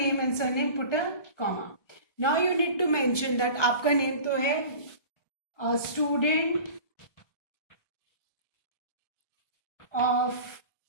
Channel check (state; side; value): late; right; 1.2 ms